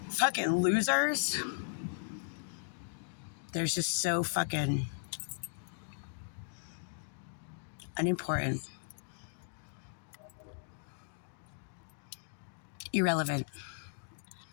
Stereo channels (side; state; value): right; silent; digital silence